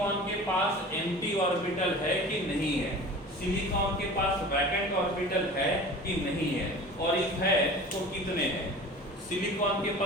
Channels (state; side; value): normal; both; correlation 0.39